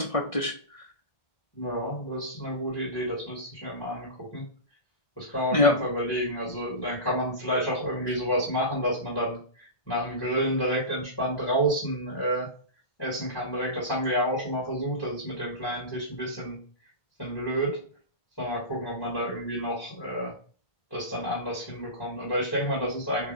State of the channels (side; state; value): right; late; 1.6 ms